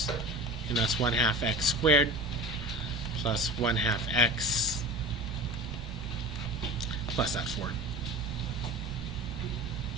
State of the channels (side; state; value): both; normal; correlation 0.34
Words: and that's 1/2 x squared plus 1/2 x plus that 4.